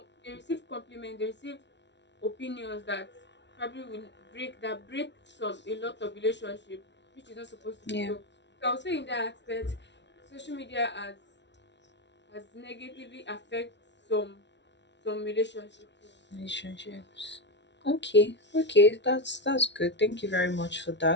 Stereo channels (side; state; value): right; late; 0.51 ms